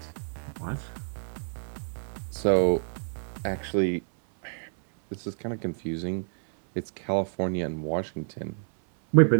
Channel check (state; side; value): silent; left; 59 dB below the other